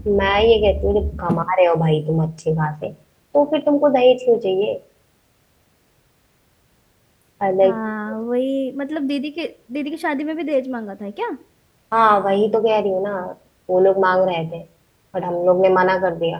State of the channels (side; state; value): both; identical; correlation 1.00